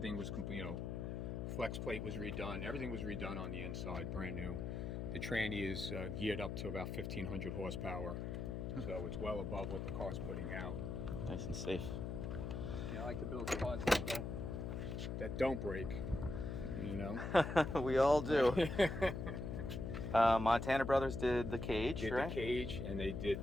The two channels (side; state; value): left; noise; hum, 4 dB below the sound